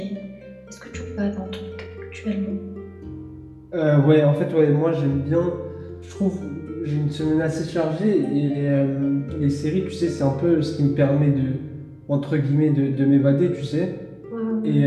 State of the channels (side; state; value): both; identical; correlation 1.00